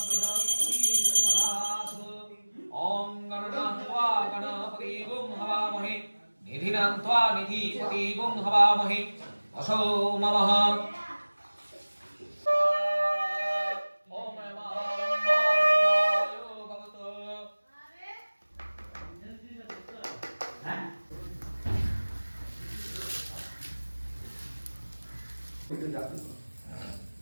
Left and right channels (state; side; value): inverted; both; correlation -1.00